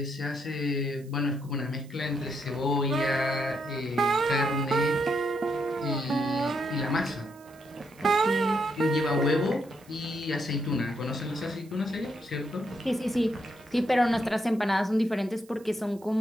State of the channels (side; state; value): right; noise; hiss, 27 dB below the sound